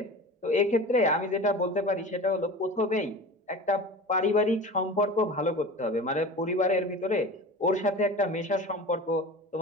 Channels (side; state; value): both; normal; correlation 0.34